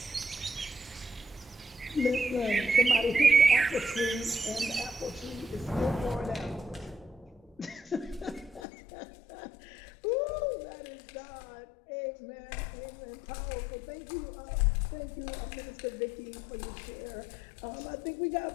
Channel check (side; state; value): right; drops out; at 8.6 s